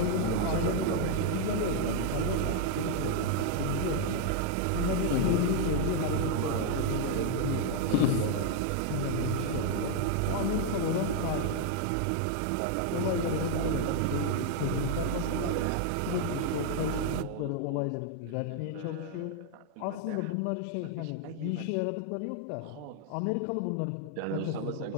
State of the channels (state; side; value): different; both; correlation 0.00